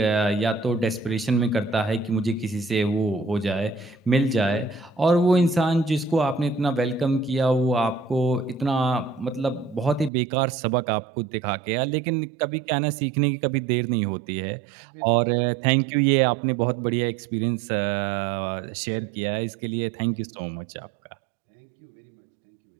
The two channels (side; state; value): left; drops out; at 10.1 s